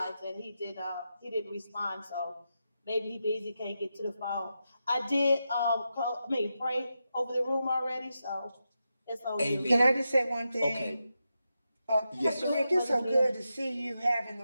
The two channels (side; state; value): both; inverted; correlation -0.88